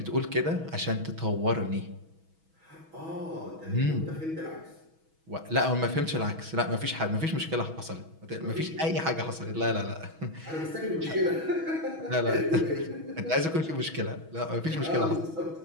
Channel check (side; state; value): left; late; 6.2 ms